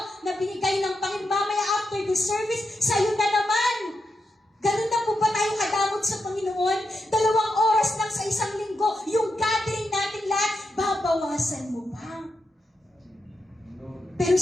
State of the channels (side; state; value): both; normal; correlation 0.86